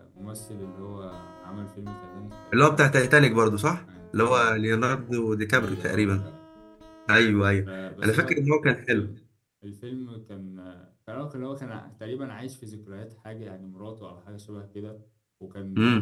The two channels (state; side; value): identical; both; correlation 1.00